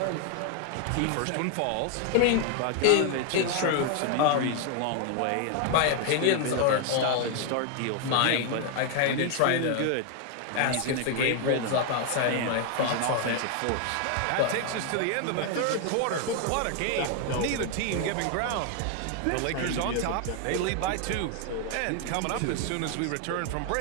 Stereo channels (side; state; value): both; different; correlation 0.00